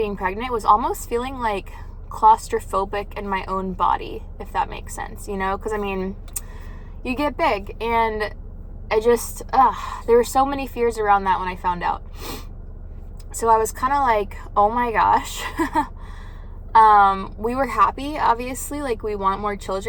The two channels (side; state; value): both; identical; correlation 1.00